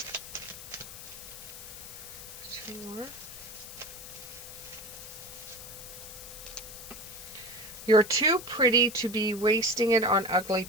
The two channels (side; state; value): left; noise; hiss, 12 dB below the sound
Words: Two more. You're too pretty to be wasting it on ugly